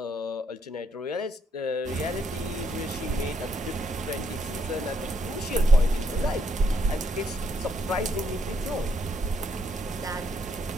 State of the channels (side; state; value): both; normal; correlation 0.73